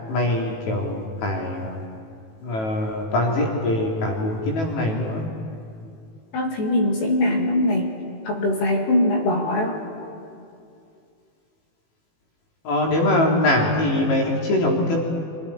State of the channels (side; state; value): right; late; 18 ms